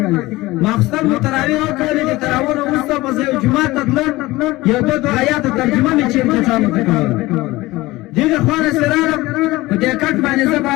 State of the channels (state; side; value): quieter; right; 19.4 dB